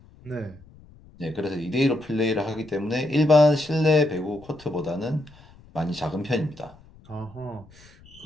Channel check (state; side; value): noise; left; rumble, 25 dB below the sound